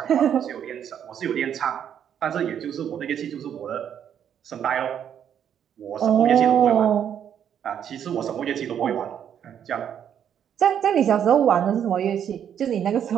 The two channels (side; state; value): left; quieter; 9.0 dB